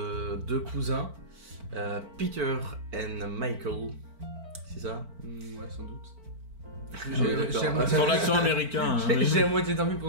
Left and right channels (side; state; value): left; late; 4.4 ms